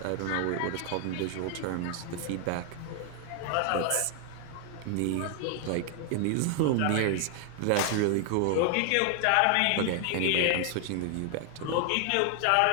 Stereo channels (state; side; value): different; both; correlation 0.00